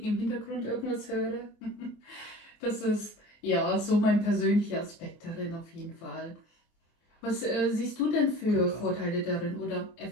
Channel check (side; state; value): right; late; 24 ms